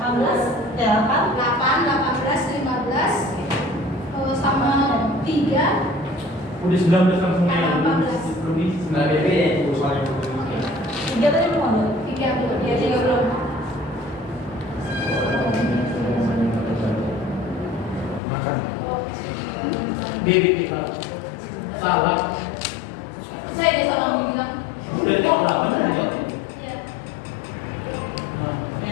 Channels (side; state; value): right; drops out; at 18.2 s